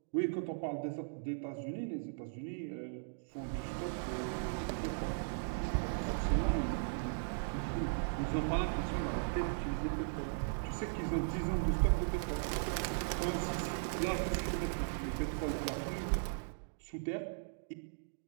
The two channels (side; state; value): left; silent; digital silence